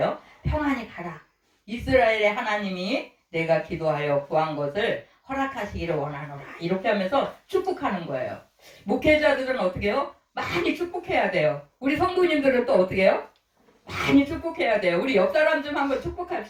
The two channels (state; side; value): identical; both; correlation 1.00